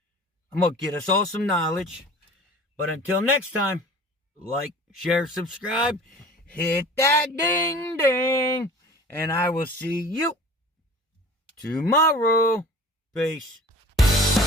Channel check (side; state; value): both; normal; correlation 0.43